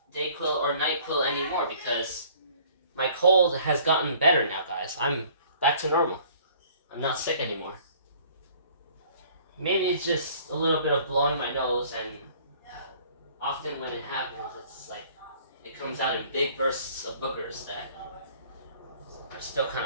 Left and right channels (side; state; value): both; inverted; correlation -0.54